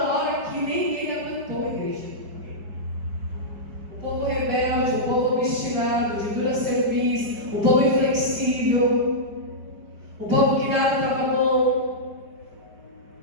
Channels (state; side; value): late; left; 4.8 ms